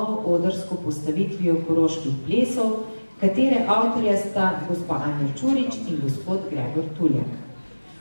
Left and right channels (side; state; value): both; inverted; correlation -1.00